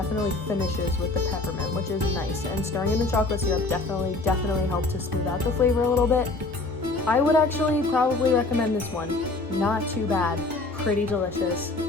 finishes with the peppermint, which is nice. And stirring in the chocolate syrup definitely helped to smooth out the flavor a little bit. I would actually probably recommend this one. Not too bad, pretty delicious.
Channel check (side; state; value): right; quieter; 3.3 dB